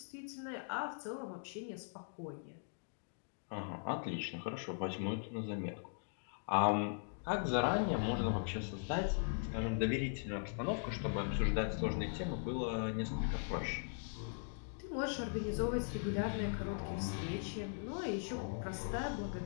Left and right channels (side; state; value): right; silent; digital silence